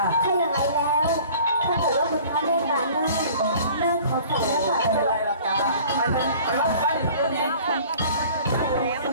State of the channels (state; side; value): inverted; both; correlation -0.48